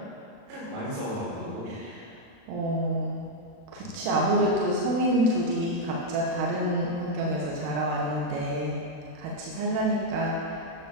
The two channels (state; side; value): late; left; 36 ms